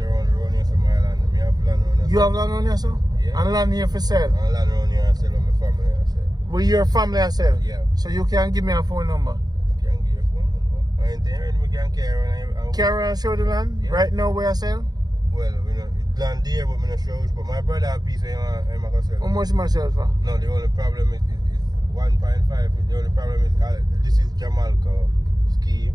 here, so my land. Me have land around here. You have land around yourself? Yeah. And land here for sale? And land around here, I sell with my family, I sell. With your family, I sell? Yeah. So you can give me a phone number? Can't give you a phone number. I ain't there, we can't carry on. Carry and show the land? Yeah. Right now where I sell? Well, we know, it land there, but me not show. But my brother have a piece of I'm going to sell. How much myself for? No, the only problem is 1.5. The only problem is this is Jamaica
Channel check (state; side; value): late; left; 0.19 ms